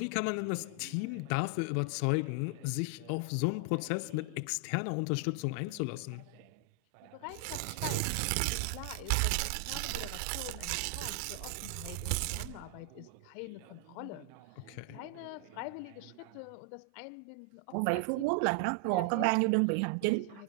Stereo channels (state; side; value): different; both; correlation 0.00